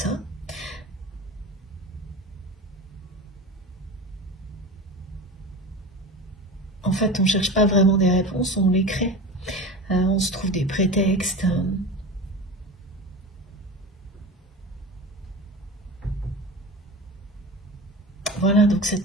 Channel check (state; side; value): normal; both; correlation 0.30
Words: En fait, on ne cherche pas vraiment des réponses, on les crée. On se trouve des prétextes. Voilà, donc cette